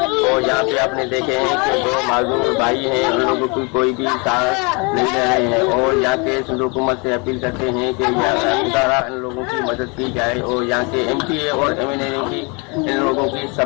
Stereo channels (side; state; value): right; quieter; 30.9 dB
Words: और यहाँ पे आपने देखे हैं कि दो मालूम भाई हैं, उन लोगों की कोई भी साथ नहीं दे रहे हैं। और यहाँ के हुकूमत से अपील करते हैं कि यहाँ इन लोगों की मदद की जाए। और यहाँ के एमपीए और एमएनए ने भी इन लोगों की